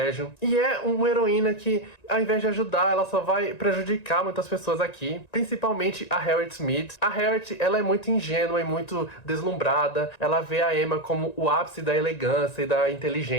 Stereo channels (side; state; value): right; late; 1.9 ms